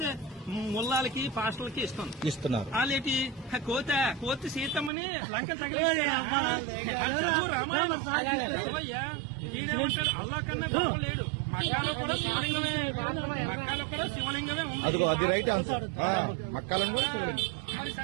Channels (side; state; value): left; drops out; at 4.9 s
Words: ముల్లాలకి పాస్టర్లకి ఇస్తున్నారు. వాళ్ళేటి కోతి సీతమ్మని లంక తగిలిస్తారు. రామాయణం చదవయ్యా. ఈడేమంటాడు అల్లా కన్నా గొప్ప లేడు. మక్కాలో కూడా శివలింగమే ఉంది. మరి